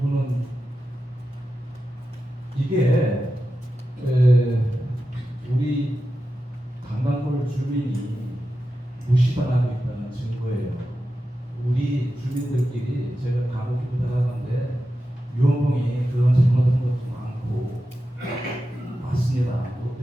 이게 우리 강남골 주민이 무시당하고 있다는 증거예요. 우리 주민들끼리 제가 간혹 부탁하는데 유원봉이 그런 잘못한 것도 많고 맞습니다.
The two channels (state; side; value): normal; both; correlation 0.91